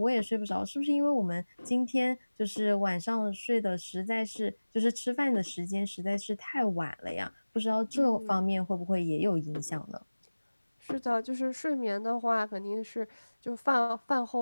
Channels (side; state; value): both; inverted; correlation -1.00